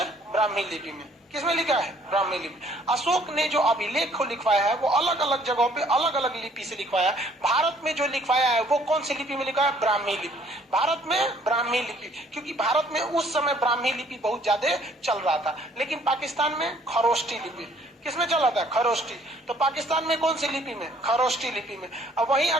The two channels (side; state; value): both; normal; correlation 0.60